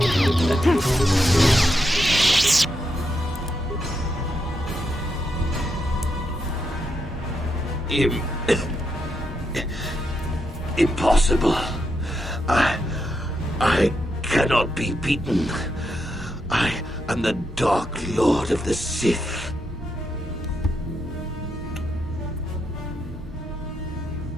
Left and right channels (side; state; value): both; normal; correlation 0.82